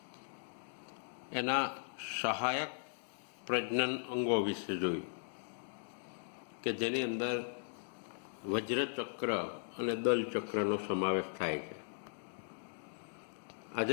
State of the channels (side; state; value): right; silent; digital silence